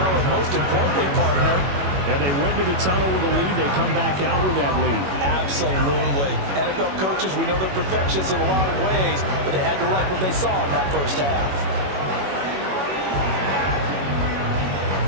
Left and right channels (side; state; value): left; late; 21 ms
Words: and most importantly, partner, yeah, they went to the tunnel with a lead. They come back out with that lead. Absolutely. NFL coaches, we know they're perfectionists in a lot of ways, but they had to like what they saw in that first half.